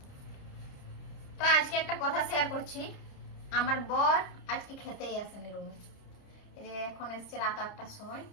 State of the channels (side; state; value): right; late; 30 ms